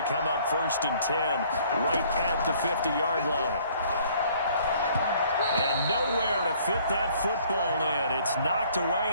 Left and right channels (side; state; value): both; inverted; correlation -0.59